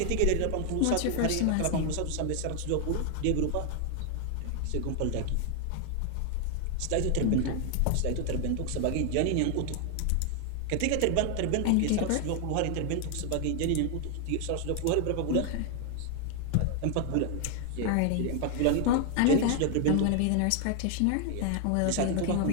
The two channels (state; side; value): different; both; correlation 0.00